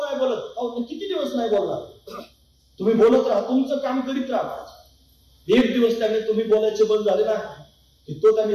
नाही बोलत, अहो किती दिवस नाही बोलणार, तुम्ही बोलत राहा, तुमचं काम करीत राहा. एक दिवस त्याने तुम्ही बोलायचे बंद झाले ना, की तो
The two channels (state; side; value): identical; both; correlation 1.00